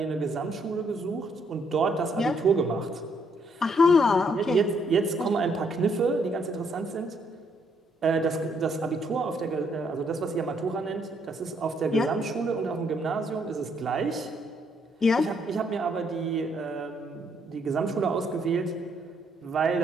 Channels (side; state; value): both; normal; correlation 0.71